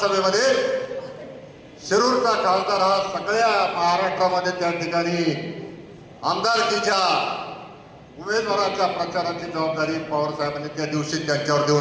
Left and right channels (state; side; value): identical; both; correlation 1.00